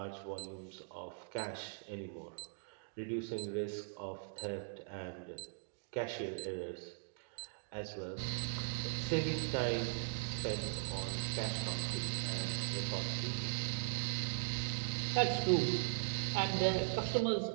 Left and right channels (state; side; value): silent; left; digital silence